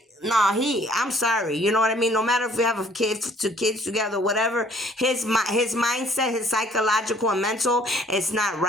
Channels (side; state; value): both; normal; correlation 0.59